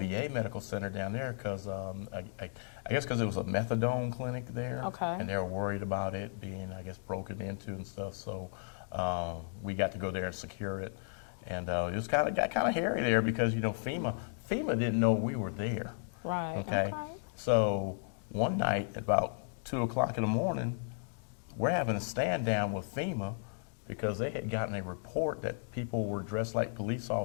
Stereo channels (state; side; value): silent; right; digital silence